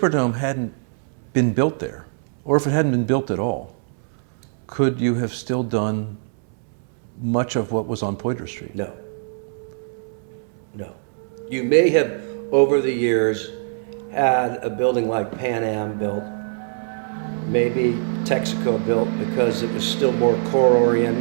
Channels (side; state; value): left; silent; digital silence